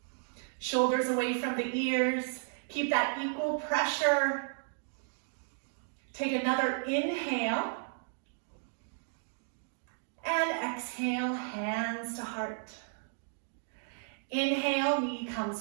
Shoulders away from the ears. Keep that equal pressure. Take another inhale. And exhale, hands to heart. Inhale, knee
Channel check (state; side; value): silent; left; digital silence